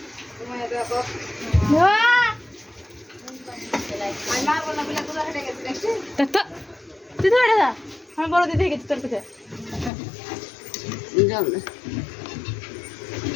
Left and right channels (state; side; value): drops out; right; at 9.9 s